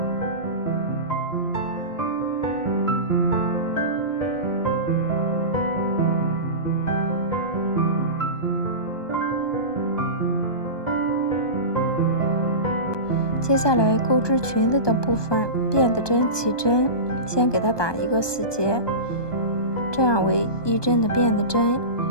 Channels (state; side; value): late; right; 1.2 ms